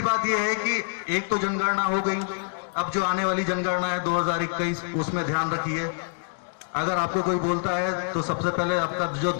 बात यह है कि एक तो जनगणना हो गई, अब जो आने वाली जनगणना है 2021, उसमें ध्यान रखिए। अगर आपको कोई बोलता है तो सबसे पहले आपका जो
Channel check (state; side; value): silent; right; digital silence